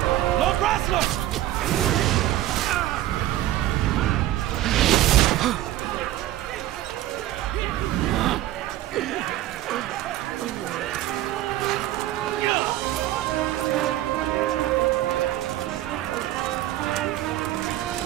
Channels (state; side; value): quieter; left; 14.6 dB